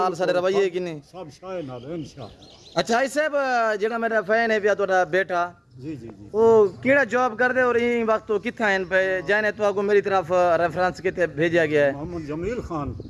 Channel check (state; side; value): identical; both; correlation 1.00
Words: सारे रवैये कि नहीं सब शाय नाल इंशाल्लाह। अच्छा आई साहब जेड़ा मेरा फैन है पिया तोड़ा बेटा जी जी जी वो केड़ा जॉब कर दे और इन वक्त तो किथा हैं पे जाने तो आपको मेरी तरफ रेफरेंस के भेजा गया है। मोहम्मद जमील खान।